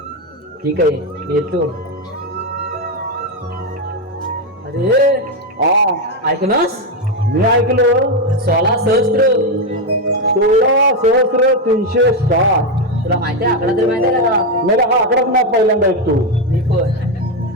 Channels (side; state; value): both; normal; correlation 0.07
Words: ठीक आहे मी येतो. अरे ऐकनास मी ऐकलो 16,360. तुला माहिती आहे आकडा तरी माहिती आहे का? मला हा आकडाच नाही पहिल्यांदा ऐकतो. मी पण